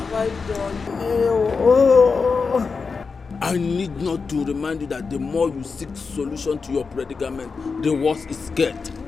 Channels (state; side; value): quieter; right; 4.9 dB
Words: I done? Oh. I need not to remind you that the more you seek solution to your predicament, the worse it gets.